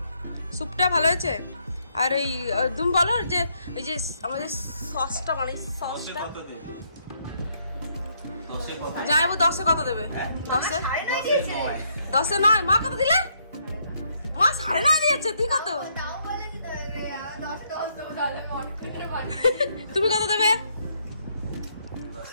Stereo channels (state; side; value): inverted; both; correlation -0.72